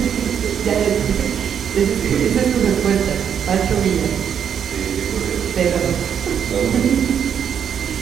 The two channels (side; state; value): left; quieter; 8.2 dB